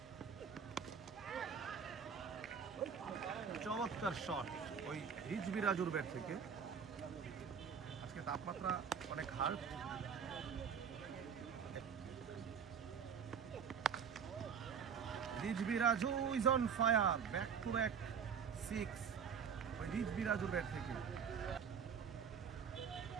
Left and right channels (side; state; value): left; quieter; 6.9 dB